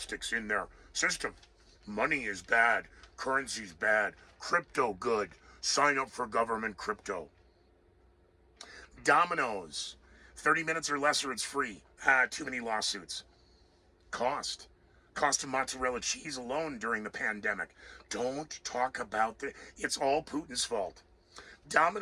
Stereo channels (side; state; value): both; identical; correlation 1.00